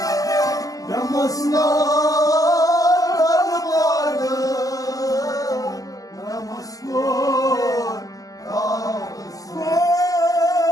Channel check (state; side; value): late; right; 0.17 ms